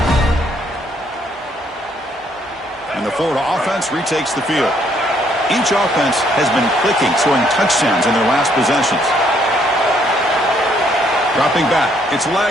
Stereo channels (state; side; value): normal; both; correlation 0.68